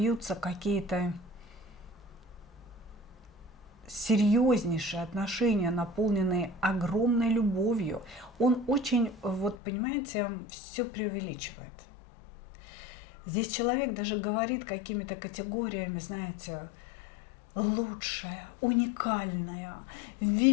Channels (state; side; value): drops out; right; at 9.6 s